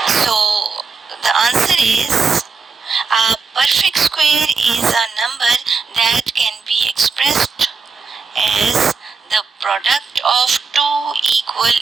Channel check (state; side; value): quieter; left; 4.9 dB